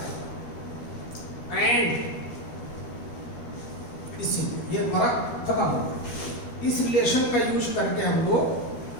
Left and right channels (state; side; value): late; right; 13 ms